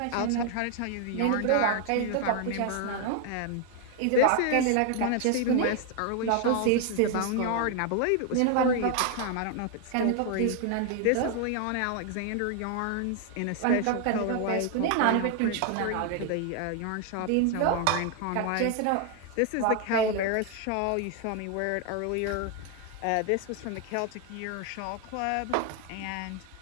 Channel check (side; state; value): both; different; correlation 0.00